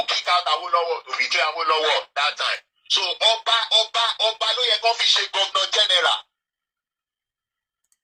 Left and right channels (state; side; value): identical; both; correlation 1.00